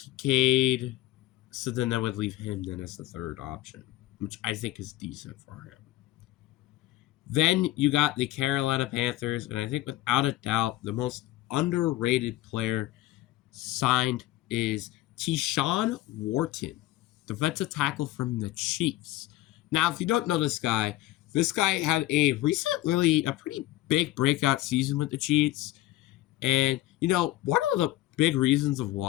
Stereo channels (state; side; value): quieter; right; 16.1 dB